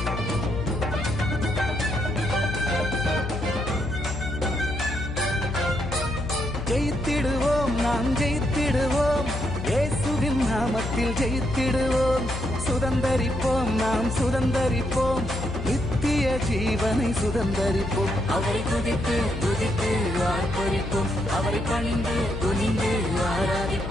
ஜெயித்திடுவோம் நாம் ஜெயித்திடுவோம், இயேசுவின் நாமத்தில் ஜெயித்திடுவோம். சுதந்தரிப்போம் நாம் சுதந்தரிப்போம், நித்திய ஜீவனை சுதந்தரிப்போம். அவரை துதித்து துதித்து ஆர்ப்பரிப்போம், அவரை பணிந்து துணிந்து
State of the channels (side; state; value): left; noise; hum, 6 dB below the sound